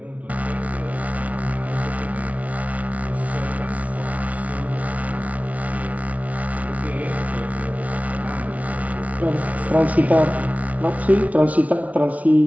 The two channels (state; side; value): late; left; 0.068 ms